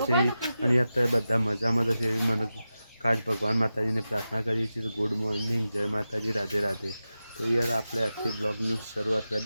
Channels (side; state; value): both; inverted; correlation -0.92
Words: છે. અને યાર તો બધા મજામાં તો છે એવી મને ખાસ ભગવાન માતાજીને પ્રાર્થના કરીએ છીએ. તો ગુડ મોર્નિંગ, જય માતાજી, રાધે રાધે. તો યાર આપણે આજથી બ્લોગની શરૂઆત